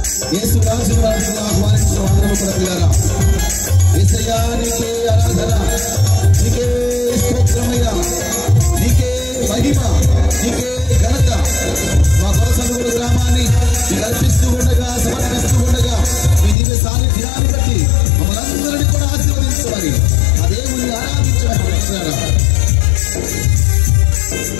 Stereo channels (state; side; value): drops out; right; at 16.6 s